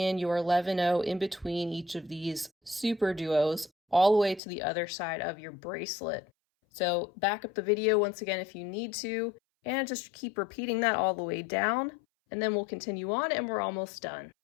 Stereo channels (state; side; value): drops out; right; at 4.4 s